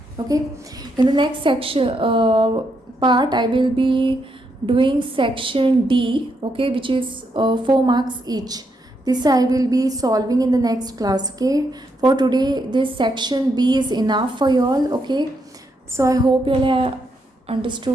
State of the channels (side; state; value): both; normal; correlation 0.79